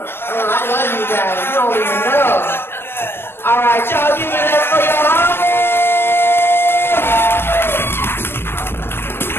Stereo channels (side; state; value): right; late; 0.11 ms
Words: love you guys. You don't even know. All right, y'all.